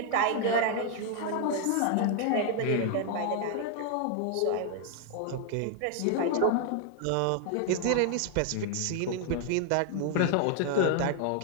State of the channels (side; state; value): both; different; correlation 0.00